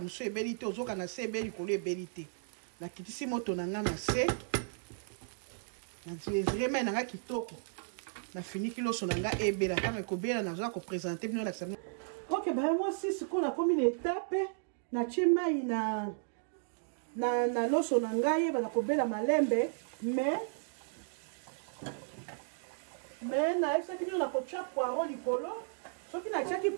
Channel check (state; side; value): silent; left; digital silence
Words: mosusu ebeli te ozoka na se ebeli likolo ebeli te nakitisi moto na ngai na se namesure mai na ngai kitoko nafiniki loso na ngai ebela ntango ekobela nazoka kopresente bino lakisa bino ok baya mwasi sikoyo nakomi na etape natie mai na loso na ngai yeba kobela malembe mais naesaki bino na kotia poireau likolo soki natiaki